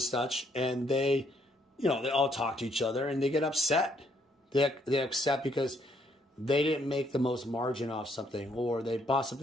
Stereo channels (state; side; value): normal; both; correlation 0.70